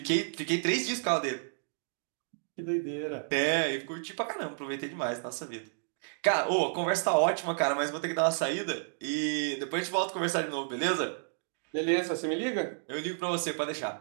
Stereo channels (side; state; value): left; silent; digital silence